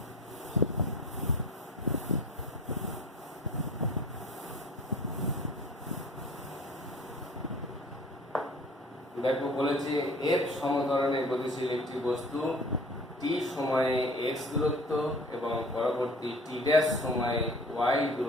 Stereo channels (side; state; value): both; normal; correlation 0.44